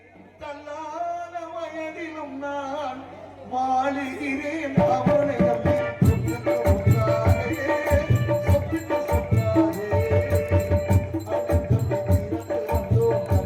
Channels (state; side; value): identical; both; correlation 1.00